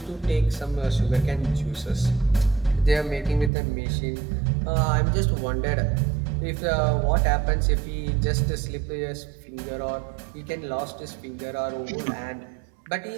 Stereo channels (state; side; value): drops out; left; at 3.5 s